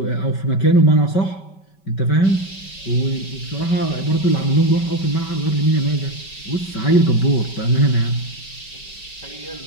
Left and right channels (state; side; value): late; right; 5.2 ms